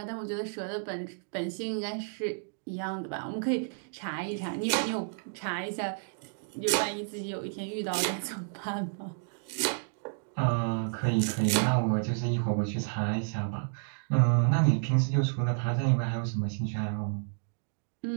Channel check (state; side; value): silent; left; digital silence